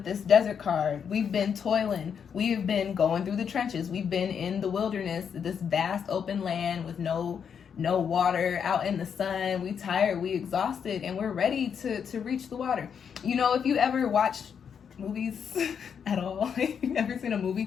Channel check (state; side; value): quieter; right; 7.3 dB